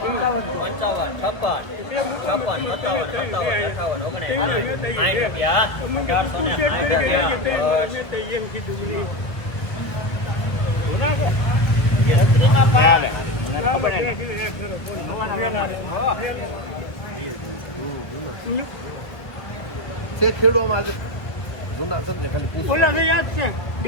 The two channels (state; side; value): late; right; 1.5 ms